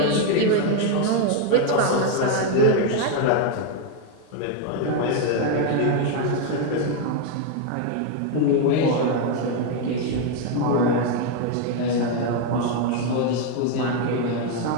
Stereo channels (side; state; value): both; different; correlation 0.01